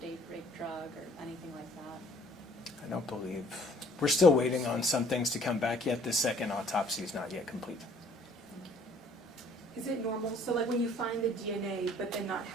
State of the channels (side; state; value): both; normal; correlation 0.58